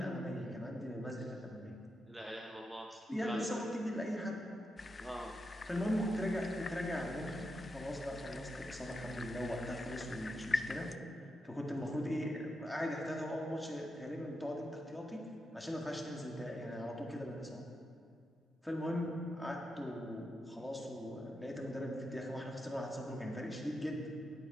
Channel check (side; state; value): both; normal; correlation 0.86